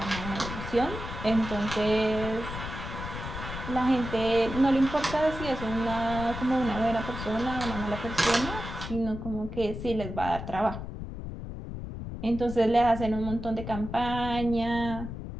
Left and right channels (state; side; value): noise; left; rumble, 8 dB below the sound